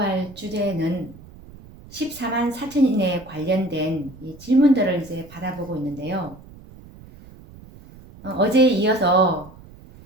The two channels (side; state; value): right; noise; rumble, 20 dB below the sound